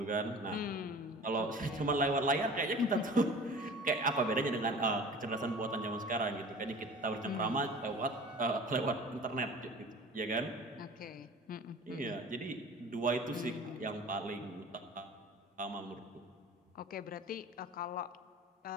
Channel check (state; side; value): normal; both; correlation 0.42